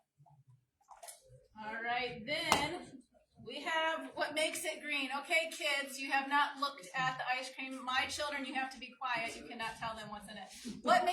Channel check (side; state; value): both; identical; correlation 1.00